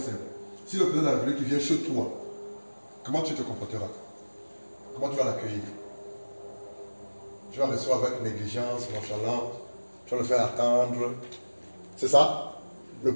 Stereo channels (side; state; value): both; inverted; correlation -1.00